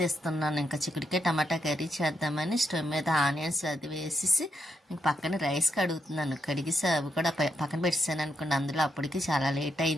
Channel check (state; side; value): normal; both; correlation 0.81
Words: ఇంకా చిక్కుడుకాయ టమాటా కర్రీ చేద్దామని స్టవ్ మీద ఆనియన్స్ అది వేసేసి ఇంక పక్కన రైస్ కడుగుతున్నాను. కడిగేసి అవి కూడా పక్కన పెట్టేసాను అనుకోండి. అందులో అప్పటికి చాలా లేట్